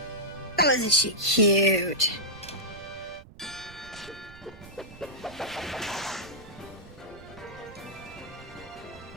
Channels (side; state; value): right; noise; rumble, 19 dB below the sound